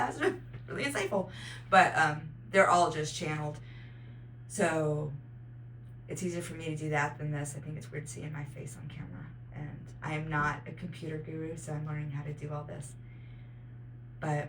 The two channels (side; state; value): both; identical; correlation 1.00